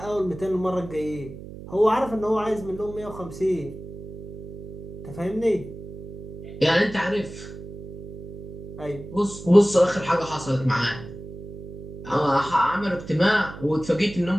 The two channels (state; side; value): noise; right; hum, 13 dB below the sound